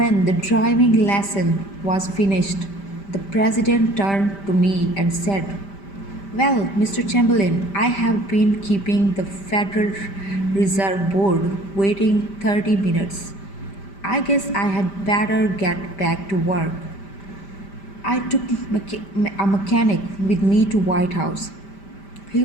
the driving lesson was finished, the president turned to me and said, well, Mr. Chamberlain, I have been keeping the Federal Reserve Board waiting 30 minutes. I guess I had better get back to work. I took a mechanic with me to White House. He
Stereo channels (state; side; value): late; right; 5.1 ms